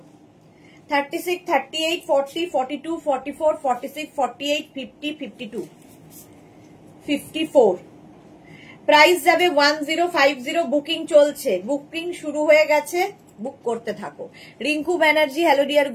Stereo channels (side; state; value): both; identical; correlation 1.00